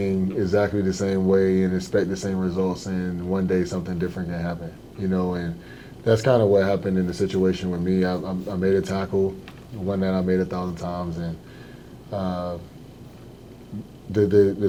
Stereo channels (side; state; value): both; identical; correlation 1.00